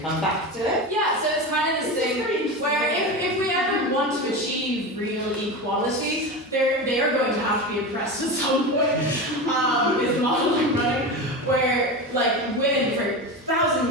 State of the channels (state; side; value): normal; both; correlation 0.23